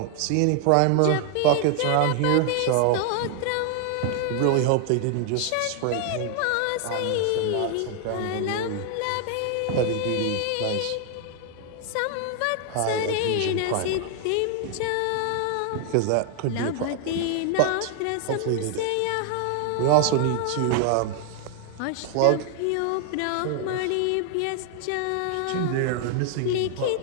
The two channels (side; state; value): both; different; correlation 0.00